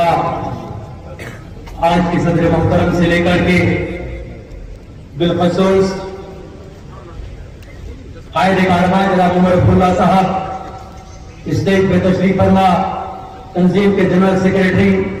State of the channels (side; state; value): both; identical; correlation 1.00